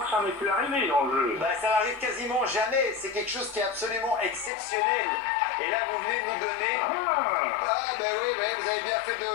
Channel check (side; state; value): right; drops out; at 4.5 s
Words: que ça m'est plus arrivé dans le jeu. Bah, ça n'arrive quasiment jamais. C'est quelque chose qui est absolument exceptionnel. Et là, vous venez de nous donner... Ah, ben oui, vous avez bien fait